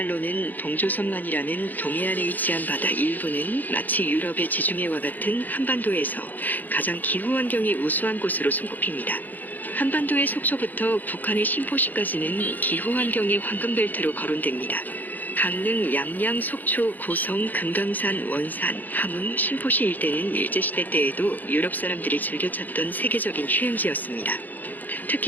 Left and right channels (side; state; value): right; late; 0.084 ms